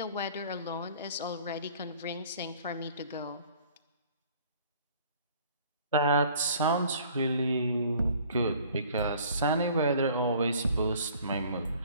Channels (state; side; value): inverted; both; correlation -0.53